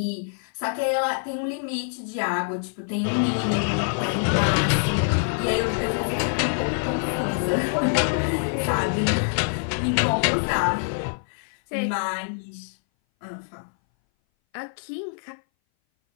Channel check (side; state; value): right; silent; 59 dB below the other